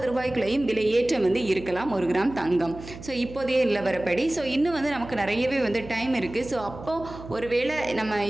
ரூபாய்க்குள்ளேயும் விலை ஏற்றம் இருக்கலாம் 1 கிராம் தங்கம். ஸோ இப்போதைய நிலவரப்படி ஸோ இன்னும் நமக்கு நிறையவே டைம் இருக்குது. ஸோ அப்போது ஒருவேளை நம்ம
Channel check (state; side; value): noise; right; hum, 14 dB below the sound